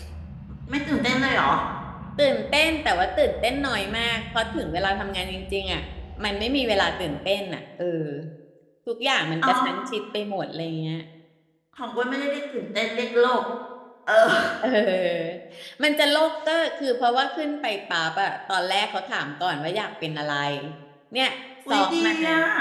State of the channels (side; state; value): both; identical; correlation 1.00